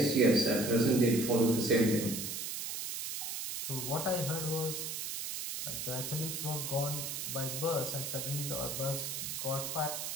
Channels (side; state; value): right; noise; hiss, 4 dB below the sound